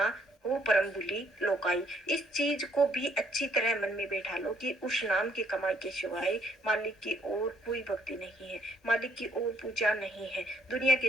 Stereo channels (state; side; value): normal; both; correlation 0.68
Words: हो परम भूली लोकाई। इस चीज को भी अच्छी तरह मन में बैठा लो कि उस नाम की कमाई के सिवाय मालिक की ओर कोई भक्ति नहीं है, मालिक की ओर पूजा नहीं है। दुनिया